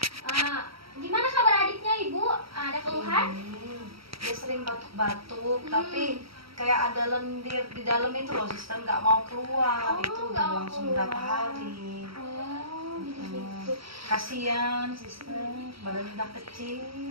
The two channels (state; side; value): late; left; 0.75 ms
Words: Gimana kabar adiknya Ibu? Ada keluhan? Dia sering batuk-batuk, tapi kayak ada lendir di dalam itu loh, Sister, nggak mau keluar. Itu nggak udah mau langsung keluar. berapa hari. Jadi gitu. Kasihan, Sister, badannya udah kecil.